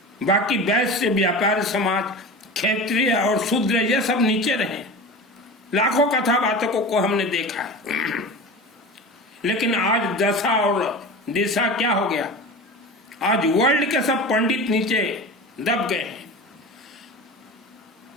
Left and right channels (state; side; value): normal; both; correlation 0.31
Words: बाकी वैश्य, व्यापारी समाज, क्षत्रिय और शूद्र ये सब नीचे रहें। लाखों कथावाचकों को हमने देखा है। लेकिन आज दशा और दिशा क्या हो गया? आज वर्ल्ड के सब पंडित नीचे दब गए हैं।